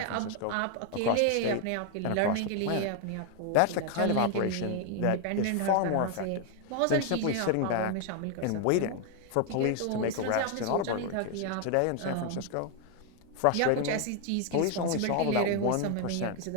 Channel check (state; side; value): different; both; correlation 0.01